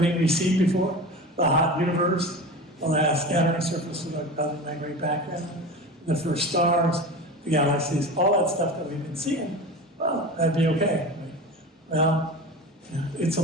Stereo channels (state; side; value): normal; both; correlation 0.31